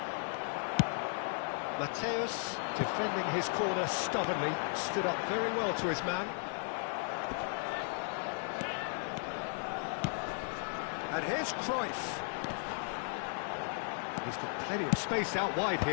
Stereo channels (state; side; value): silent; right; 54 dB below the other